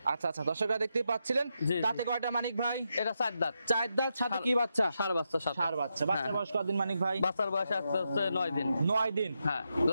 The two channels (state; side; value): inverted; both; correlation -0.85